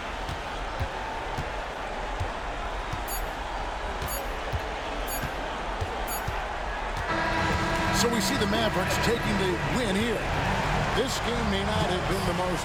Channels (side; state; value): both; identical; correlation 1.00